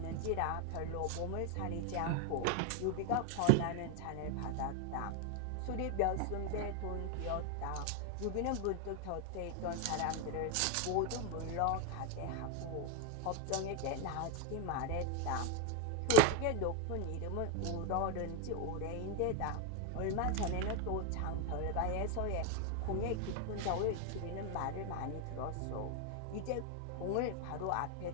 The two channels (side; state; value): both; different; correlation 0.01